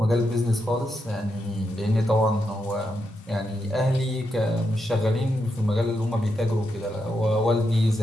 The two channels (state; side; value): normal; both; correlation 0.84